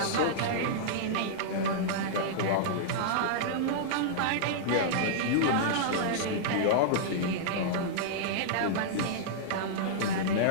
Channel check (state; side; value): different; both; correlation -0.02